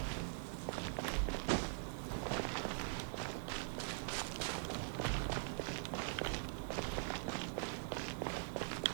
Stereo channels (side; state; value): left; silent; digital silence